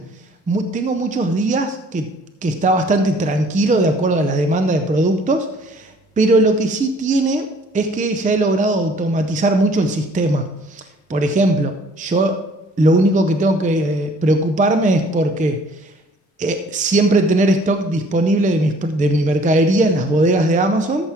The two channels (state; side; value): normal; both; correlation 0.56